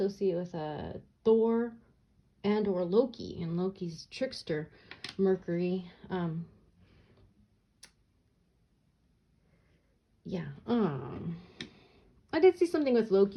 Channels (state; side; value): identical; both; correlation 1.00